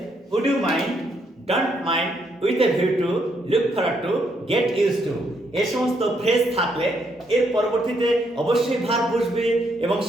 would you mind, don't mind, with a view to, look forward to, get used to এই সমস্ত phrase থাকলে এর পরবর্তীতে অবশ্যই ভার্ব বসবে এবং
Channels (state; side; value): normal; both; correlation 0.74